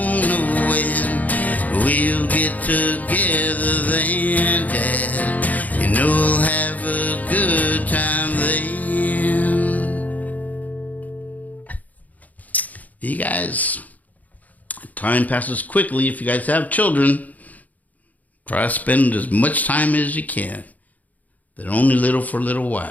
know when. We'll get together then, Dad. You know we'll have a good time then. You guys, time passes quickly if you guys have children. Try to spend as much time as you can. They're only little for a little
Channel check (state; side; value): late; right; 0.078 ms